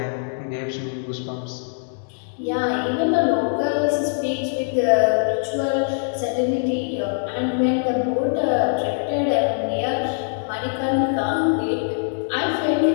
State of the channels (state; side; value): silent; right; digital silence